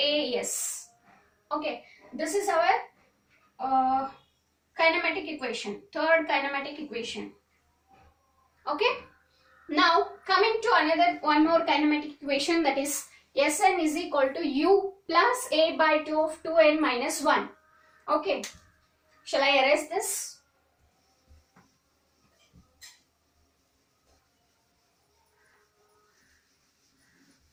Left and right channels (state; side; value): identical; both; correlation 1.00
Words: Okay, this is our kinematic equation, third kinematic equation. Okay, now coming to another one more kinematic equation, that is Sn is equal to u plus a by 2 of 2n minus 1. Okay, shall I erase this?